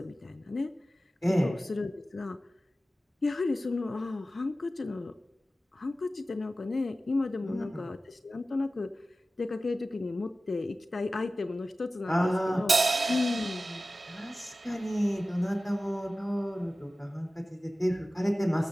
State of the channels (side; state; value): both; normal; correlation 0.95